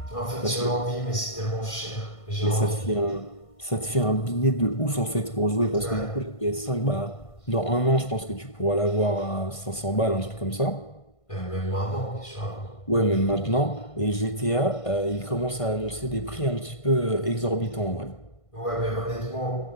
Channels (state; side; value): late; right; 1.5 ms